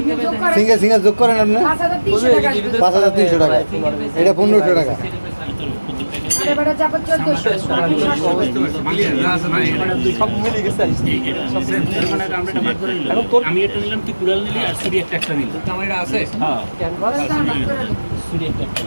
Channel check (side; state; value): both; inverted; correlation -1.00